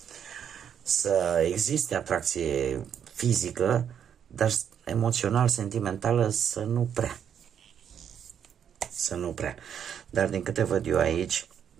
Să existe atracție fizică, dar emoțional, sentimentală, să nu prea. Dar din câte văd eu aici,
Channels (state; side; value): quieter; left; 8.5 dB